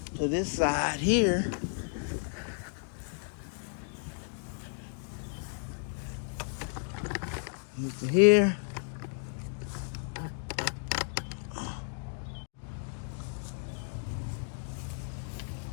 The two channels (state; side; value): silent; right; 56 dB below the other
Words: to this side here. Move to here.